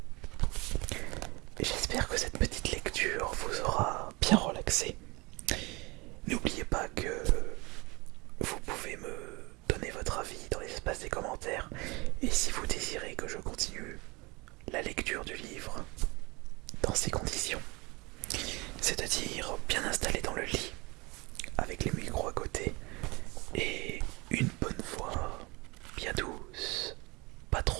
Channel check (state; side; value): quieter; left; 25.4 dB